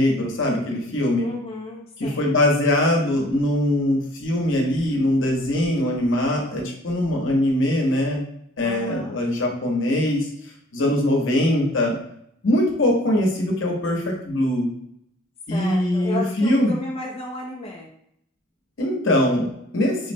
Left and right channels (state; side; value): normal; both; correlation 0.55